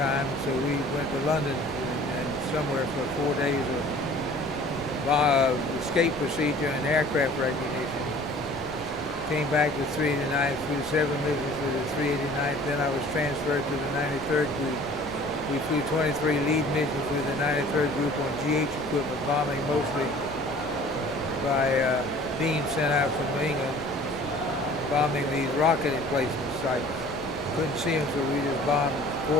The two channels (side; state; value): left; noise; rumble, 20 dB below the sound